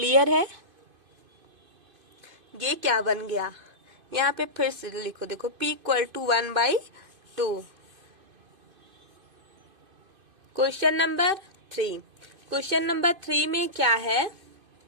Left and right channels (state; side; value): late; left; 2.5 ms